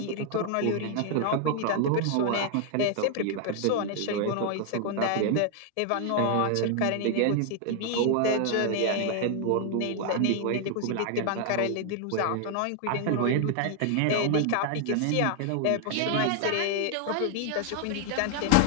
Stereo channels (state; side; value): different; both; correlation 0.00